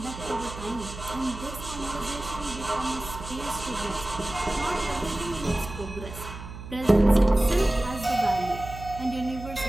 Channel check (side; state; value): right; noise; hum, 11 dB below the sound